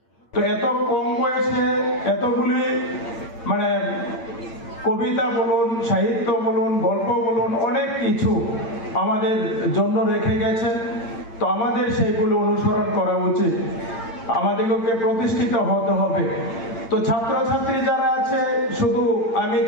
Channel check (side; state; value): right; late; 8.8 ms